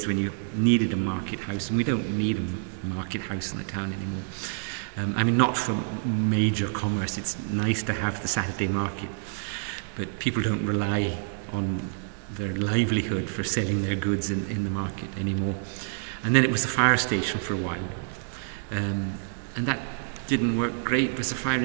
when you needed a market house, and we don't need a market house in the town anymore. Not for major commerce. It's nice to have the Saturday market, but people don't rely on their livelihood for selling their goods in the market anymore. And then it was the fire station for a while, and that didn't work great because the fire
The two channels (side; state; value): left; silent; digital silence